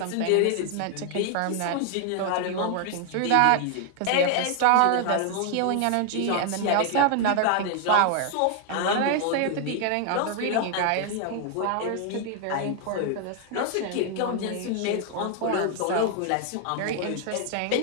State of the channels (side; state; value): both; different; correlation 0.00